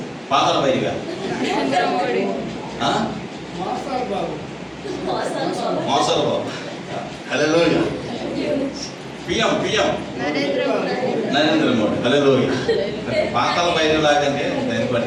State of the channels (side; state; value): both; identical; correlation 1.00